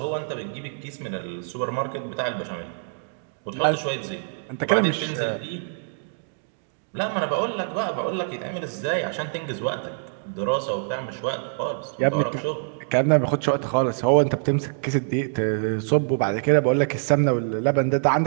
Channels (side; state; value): left; silent; digital silence